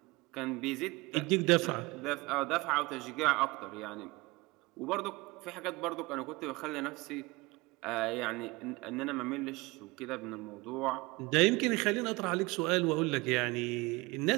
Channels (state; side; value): quieter; left; 23.4 dB